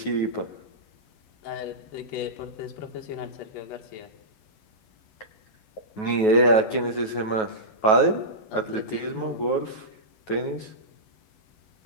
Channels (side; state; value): right; late; 9.4 ms